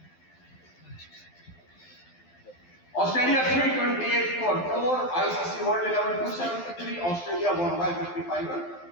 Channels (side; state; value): right; late; 12 ms